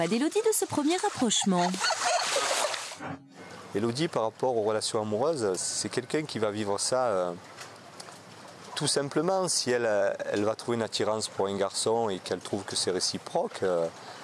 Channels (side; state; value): both; identical; correlation 1.00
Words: d'Élodie, de ce premier rapprochement? Élodie, par rapport aux relations amoureuses, c'est quelqu'un qui va vivre ça tout simplement. Si elle va trouver une attirance pour un garçon et qu'elle trouve que c'est réciproque,